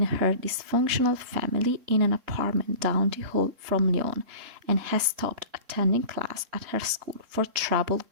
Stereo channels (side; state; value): left; late; 3.7 ms